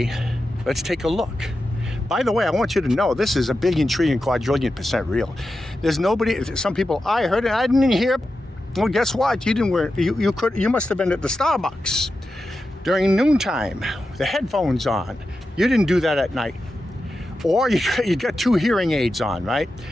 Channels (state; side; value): normal; both; correlation 0.90